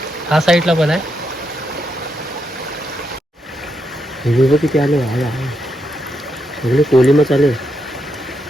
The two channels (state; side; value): normal; both; correlation 0.81